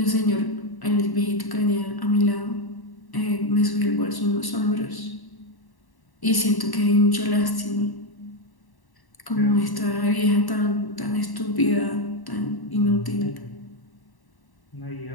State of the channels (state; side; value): late; right; 1.1 ms